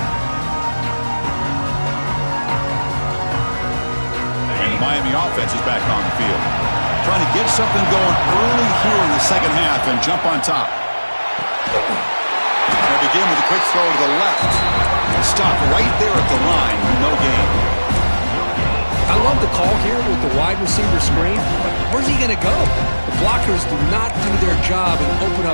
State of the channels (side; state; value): both; inverted; correlation -1.00